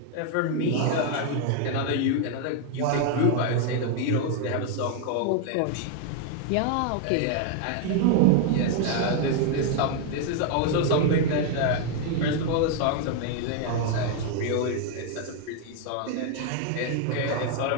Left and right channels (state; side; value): different; both; correlation 0.00